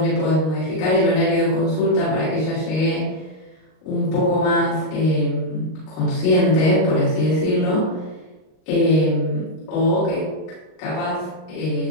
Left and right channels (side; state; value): right; late; 38 ms